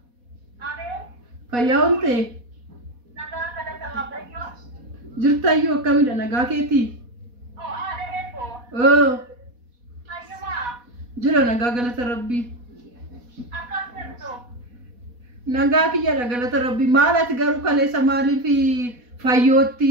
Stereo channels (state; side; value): late; left; 4.1 ms